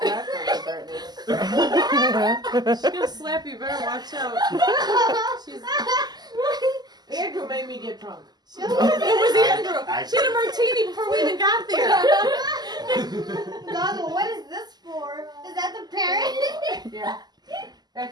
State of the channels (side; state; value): left; late; 0.20 ms